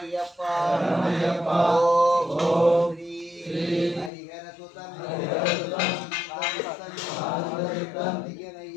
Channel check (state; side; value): drops out; right; at 4.1 s